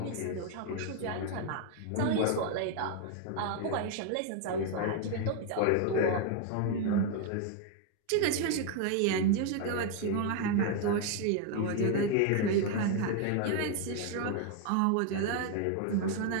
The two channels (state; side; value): different; both; correlation 0.00